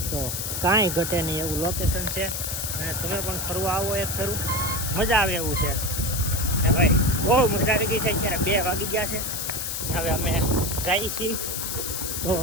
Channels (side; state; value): left; noise; hiss, 3 dB below the sound